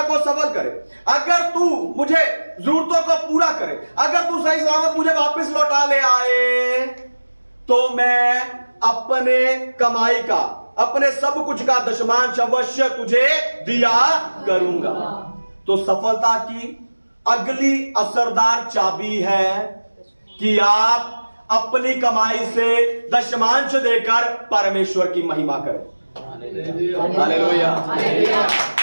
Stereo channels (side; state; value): both; inverted; correlation -1.00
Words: को सफल करे, अगर तू मुझे जरूरतों को पूरा करे, अगर तू सही सलामत मुझे वापस लौटा ले आए, तो मैं अपने कमाई का, अपने सब कुछ का दशमांश अवश्य तुझे दिया करूंगा। तो सफलता की अगली असरदार चाबी है कि आप अपनी कमाई से दशमांश देकर परमेश्वर की महिमा करें। हालेलुया।